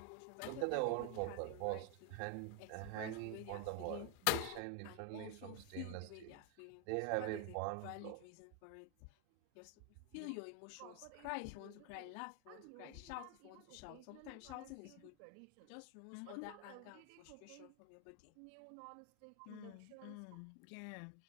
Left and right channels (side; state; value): both; different; correlation 0.01